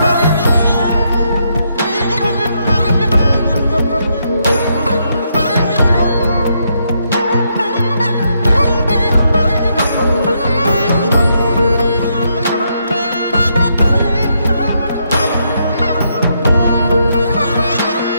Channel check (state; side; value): inverted; both; correlation -0.77